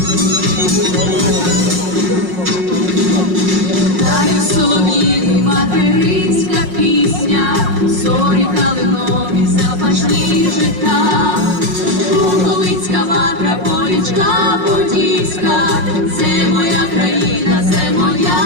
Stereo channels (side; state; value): left; late; 5.5 ms